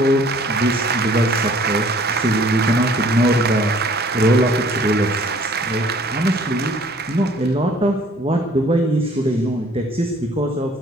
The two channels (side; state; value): both; normal; correlation 0.56